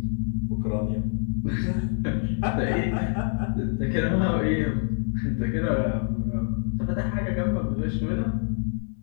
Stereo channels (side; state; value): right; silent; 59 dB below the other